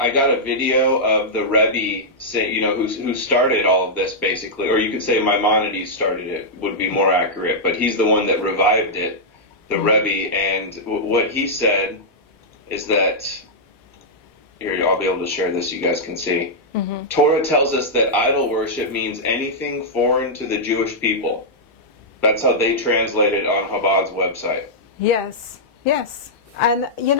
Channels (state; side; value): normal; both; correlation -0.08